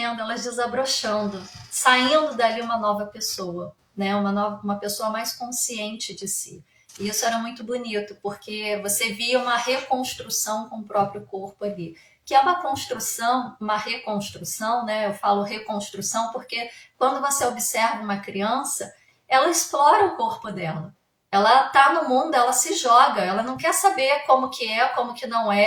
elas desabrochando, saindo dali uma nova pessoa, né? Uma pessoa mais consciente de si. E isso era muito bonito, porque você via uma reconstrução com o próprio corpo ali. Que é uma construção, uma reconstrução, né? Eu falo reconstrução porque quando você observa uma criança, ela explora o corpo dela. Ela tá no mundo, ela se joga, ela não quer saber como que é, como que não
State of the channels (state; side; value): identical; both; correlation 1.00